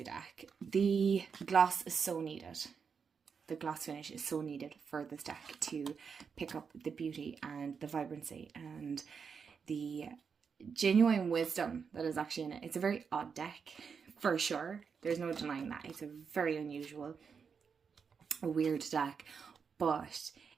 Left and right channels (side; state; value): left; quieter; 6.1 dB